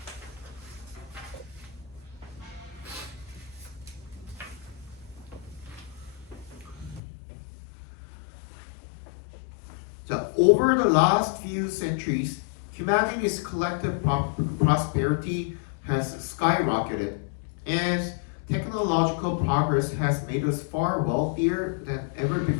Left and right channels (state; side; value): drops out; right; at 7.0 s